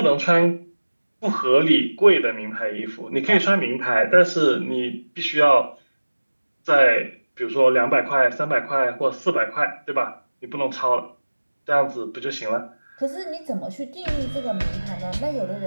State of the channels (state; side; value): inverted; both; correlation -1.00